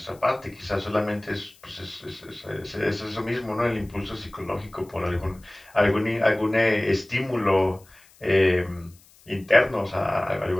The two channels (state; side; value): noise; left; hiss, 27 dB below the sound